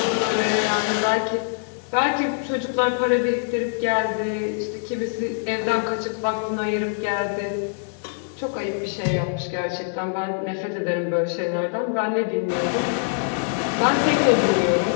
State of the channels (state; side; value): silent; right; digital silence